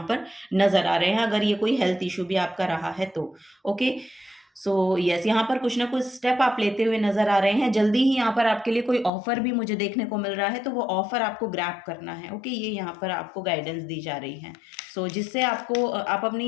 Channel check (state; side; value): drops out; right; at 9.1 s